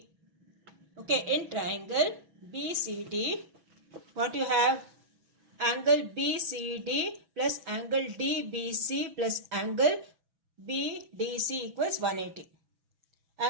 okay, in triangle BCD, what you have? Angle BCD plus angle DBC plus angle BDC equals 180.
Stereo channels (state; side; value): late; left; 6.1 ms